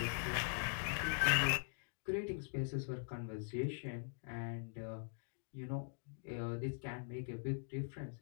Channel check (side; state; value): right; silent; digital silence